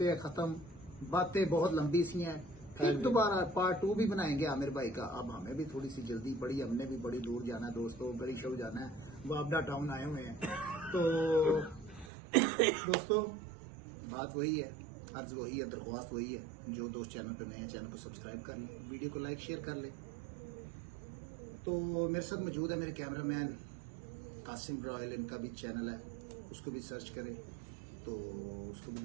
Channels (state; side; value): drops out; left; at 12.1 s